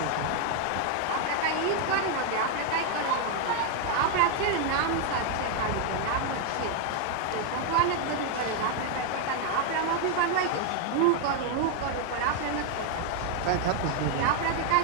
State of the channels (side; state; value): both; different; correlation 0.00